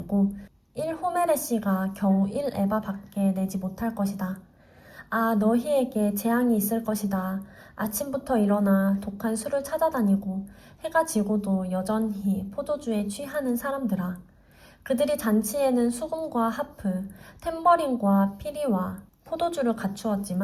1호메레시가 겨우 1에바밖에 내지 못할 것이다. 아, 너희에게 재앙이 있을 것이다. 아침부터 일어나 독한 술을 찾아다니고 해가 지고도 여전히 포도주에 취하는 사람들아. 그들이 잔치에는 수금과 하프, 탬버린과 피리와 포도주를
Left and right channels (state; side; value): identical; both; correlation 1.00